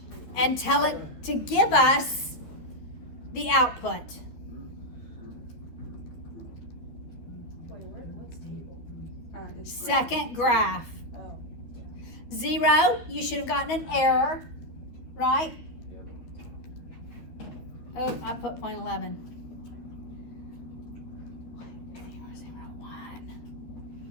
and tell it to give us the output. What's table? Second graph. 0, you should have gotten an error, right? Oh, I put 0.11. 0.001.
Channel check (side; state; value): right; late; 13 ms